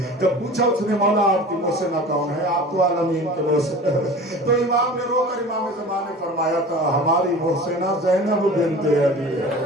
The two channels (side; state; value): both; normal; correlation 0.38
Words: جب پوچھا اس نے مولا آپ کی محسنہ کون ہے، آپ تو عالمین کے محسن، تو امام نے رو کر امام زمان نے فرمایا تھا ہماری محسنہ زینب بنت علی ہے.